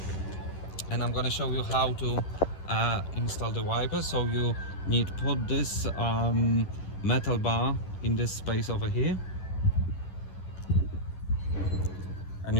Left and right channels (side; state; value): right; late; 11 ms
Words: and I'm gonna show you how to install the wiper. So you need to put this metal bar in this space over here, and